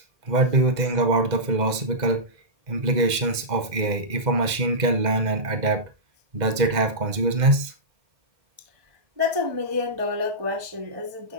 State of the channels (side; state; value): left; late; 2.0 ms